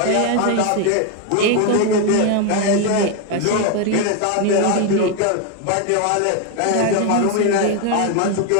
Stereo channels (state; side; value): different; both; correlation 0.01